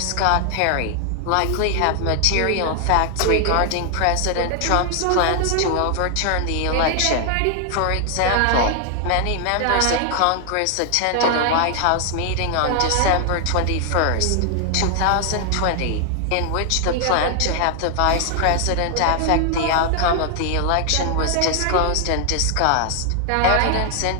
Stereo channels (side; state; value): both; different; correlation 0.00